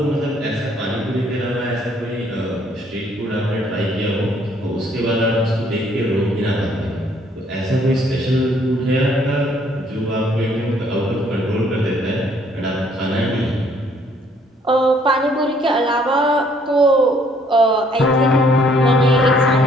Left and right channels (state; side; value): normal; both; correlation 0.64